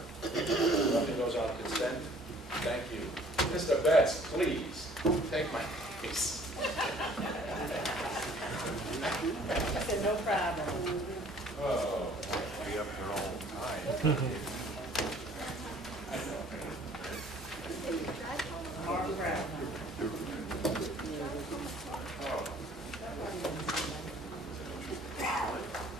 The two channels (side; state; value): both; normal; correlation 0.55